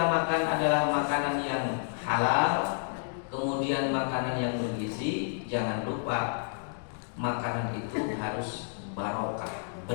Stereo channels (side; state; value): right; silent; digital silence